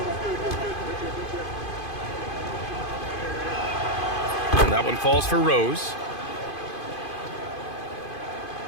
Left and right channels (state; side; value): late; right; 2.5 ms